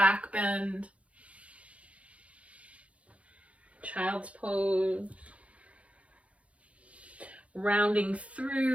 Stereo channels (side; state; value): left; late; 0.064 ms